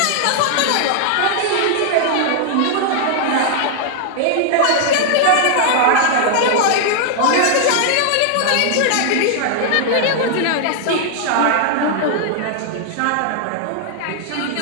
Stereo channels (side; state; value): both; different; correlation 0.00